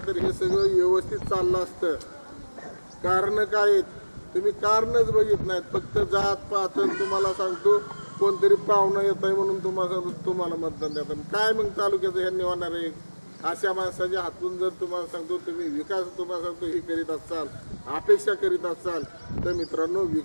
तर हे सगळं व्यवस्थित चाललं असतं। कारण काय आहेत तुम्ही कारणच बघित नाहीत, फक्त जात पात तुम्हाला सांगतो कोणतरी पाहुणं येत आहे म्हणून तुम्हाला मतदान देतात। काय मग तालुक्याचं ह्यांनी होणार आहे? अशा माणसाच्या हातून जर तुम्हाला सांगतो तुम्ही विकास तुम्हाला सांगतो हे करीत असाल, अपेक्षा करीत असाल तर मित्रांनो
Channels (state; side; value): inverted; both; correlation -1.00